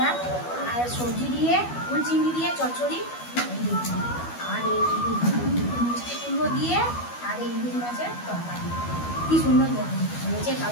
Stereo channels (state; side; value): late; right; 12 ms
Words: না, আর সবজি দিয়ে ফুল চিংড়ি দিয়ে চচ্চড়ি, আর এই মিষ্টি কুমড়ো দিয়ে, আর এই ইলিশ মাছের তরকারি। কি সুন্দর দেখুন হয়েছে,